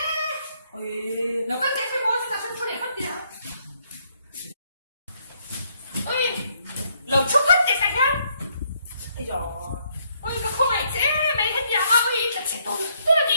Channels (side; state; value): both; inverted; correlation -0.71